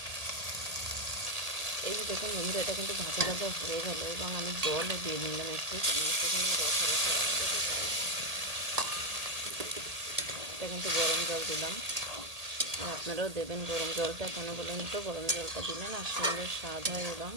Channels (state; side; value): late; left; 1.8 ms